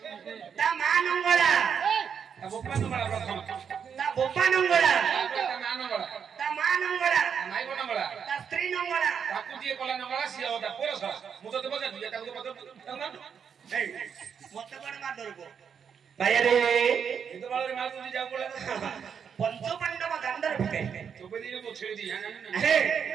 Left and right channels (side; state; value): left; quieter; 7.2 dB